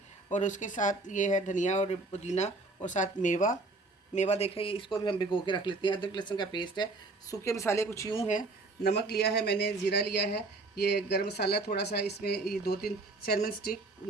और उसके साथ ये है धनिया और पुदीना, और साथ मेवा देखें, ये इसको भी हम भिगो के रख लेते हैं। अदरक लहसुन का पेस्ट है। सूखे मसाले कुछ यूँ हैं। नमक लिया है मैंने, ज़ीरा लिया है, ये गरम मसाला थोड़ा सा, इसमें ये 2-3 सिनेमन स्टिक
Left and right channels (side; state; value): left; quieter; 3.3 dB